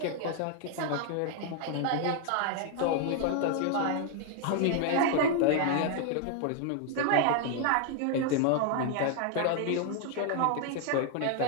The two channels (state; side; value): different; both; correlation 0.00